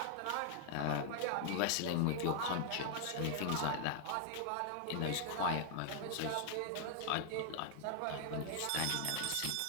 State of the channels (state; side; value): different; both; correlation 0.00